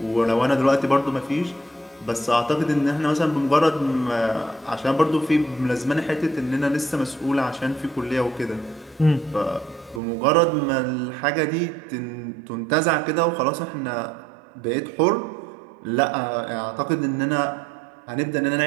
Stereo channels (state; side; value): drops out; left; at 10.0 s